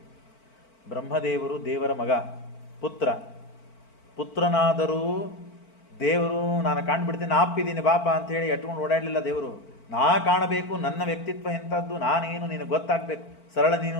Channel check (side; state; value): right; late; 4.5 ms